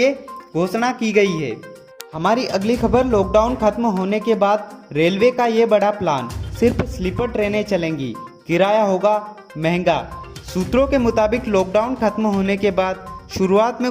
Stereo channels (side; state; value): both; identical; correlation 1.00